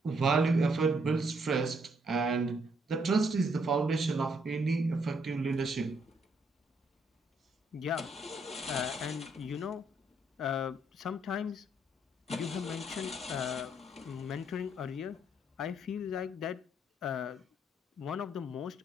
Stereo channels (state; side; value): normal; both; correlation 0.71